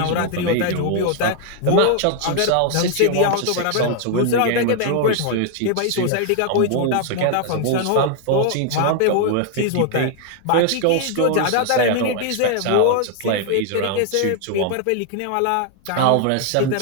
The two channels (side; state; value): both; different; correlation 0.00